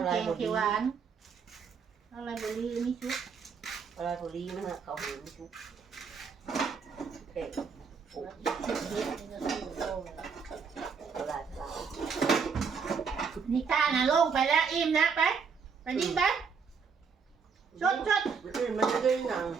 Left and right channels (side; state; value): left; quieter; 5.8 dB